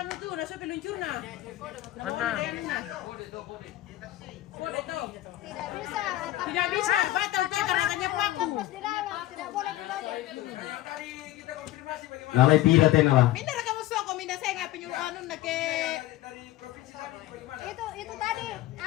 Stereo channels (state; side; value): quieter; right; 15.5 dB